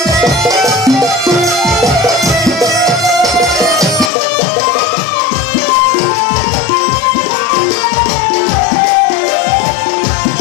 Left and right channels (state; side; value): drops out; right; at 4.1 s